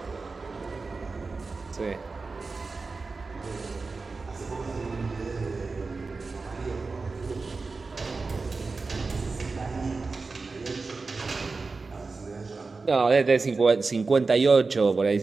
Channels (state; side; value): quieter; left; 4.1 dB